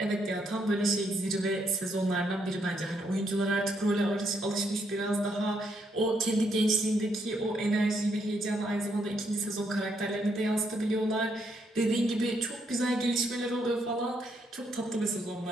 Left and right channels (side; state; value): both; normal; correlation 0.75